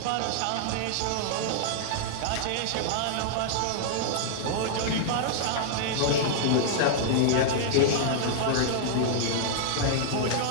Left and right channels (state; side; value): different; both; correlation -0.01